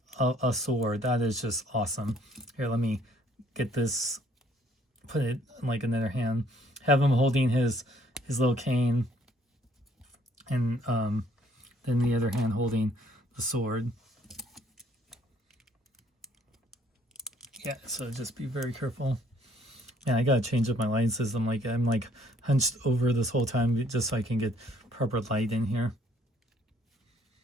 a sword. That is just awesome. Here, let me get this, put it in like another hand. Have him holding his little cane. And then the other hand holding the sword. Yeah, so just be very careful. Yeah, I gotta change up my lighting system. Like I'm like hunched over this whole time just so I can get proper light in here.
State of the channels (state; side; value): normal; both; correlation 0.63